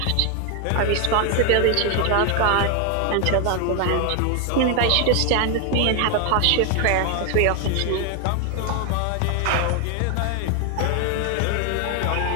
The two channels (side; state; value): both; different; correlation 0.01